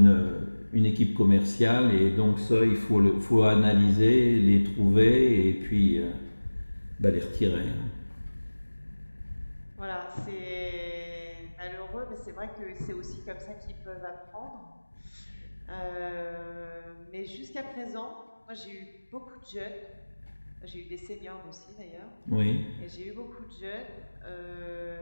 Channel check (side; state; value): both; inverted; correlation -1.00